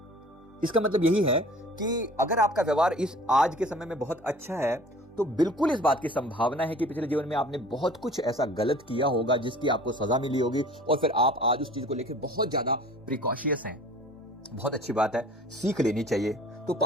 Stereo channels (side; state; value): both; normal; correlation 0.47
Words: इसका मतलब यही है कि अगर आपका व्यवहार इस आज के समय में बहुत अच्छा है, तो बिल्कुल इस बात की संभावना है कि पिछले जीवन में आपने बहुत कुछ ऐसा गलत किया होगा जिसकी आपको सजा मिली होगी, और फिर आप आज उस चीज को लेकर बहुत ज्यादा प्रिकॉशियस हैं। बहुत अच्छी बात है, सीख लेनी चाहिए। तो